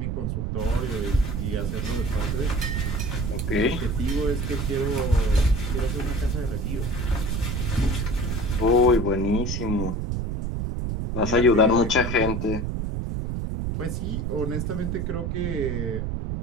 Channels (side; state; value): right; noise; rumble, 1 dB below the sound